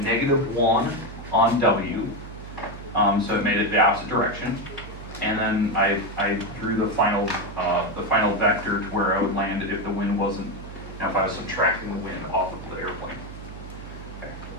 negative 1 on w. So it made it the opposite direction, and then I drew the final vector to where I would land if the wind wasn't. Now, if I was subtracting the wind off of the airplane.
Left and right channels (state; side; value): noise; right; hum, 13 dB below the sound